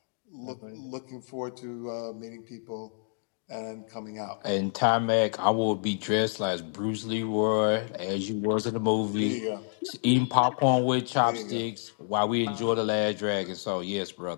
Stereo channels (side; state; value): right; silent; digital silence